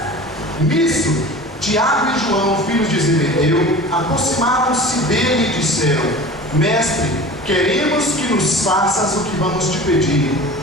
nisso, Tiago e João, filhos de Zebedeu, aproximaram-se dele e disseram: Mestre, queremos que nos faças o que vamos te pedir.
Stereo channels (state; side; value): normal; both; correlation 0.38